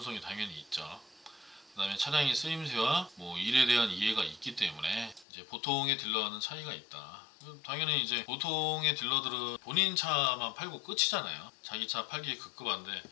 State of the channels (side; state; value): right; drops out; at 5.2 s